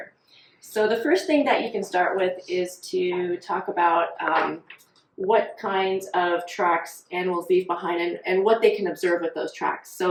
So the first thing that you can start with is to talk about what kinds of tracks animals leave behind and what they can observe with those tracks.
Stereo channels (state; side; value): identical; both; correlation 1.00